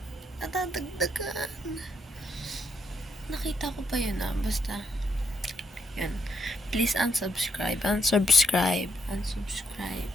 natadagdagan? Nakita ko pa yun basta. Yan. Please unsubscribe. Unsubscribe. Unsubscribe.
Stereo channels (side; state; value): both; normal; correlation 0.76